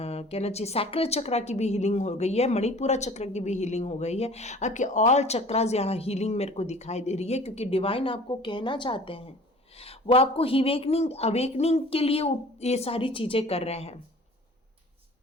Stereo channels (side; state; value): both; normal; correlation 0.46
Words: चाहिए सैक्रल चक्रा की भी हीलिंग हो गई है, मणिपुरा चक्र की भी हीलिंग हो गई है, आपके ऑल चक्रास यहाँ हीलिंग मेरे को दिखाई दे रही है, क्योंकि डिवाइन आपको कहना चाहते हैं, वो आपको अवेकनिंग के लिए ये सारी चीजें कर रहे हैं।